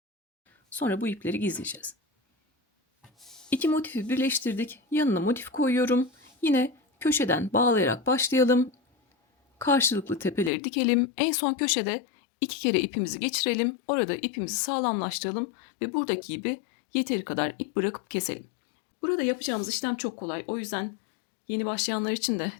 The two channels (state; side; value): drops out; right; at 10.5 s